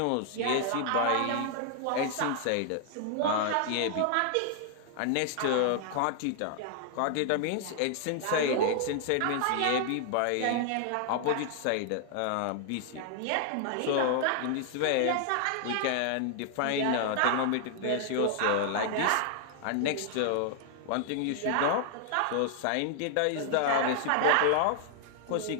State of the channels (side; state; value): both; different; correlation 0.00